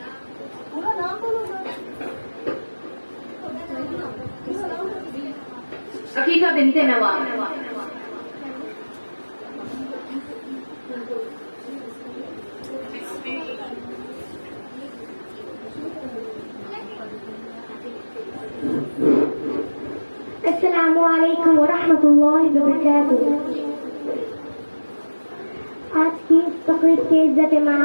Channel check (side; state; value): both; inverted; correlation -1.00